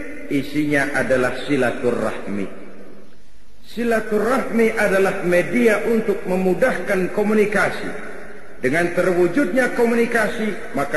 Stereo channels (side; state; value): both; identical; correlation 1.00